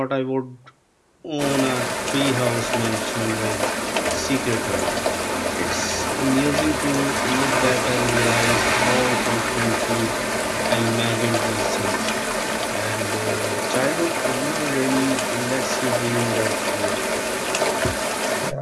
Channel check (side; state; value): both; identical; correlation 1.00